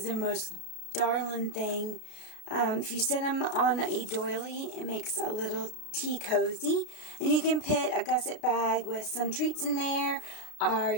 the most darling thing. If you sit them on a doily, it makes a little tea cozy. And you can put a gusset bag with some treats in there, or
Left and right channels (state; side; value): late; right; 33 ms